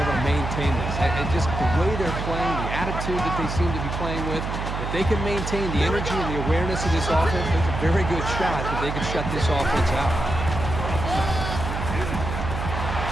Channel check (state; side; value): noise; right; hum, 4 dB below the sound